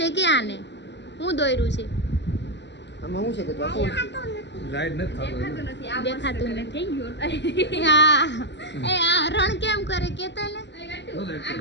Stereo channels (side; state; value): right; late; 0.51 ms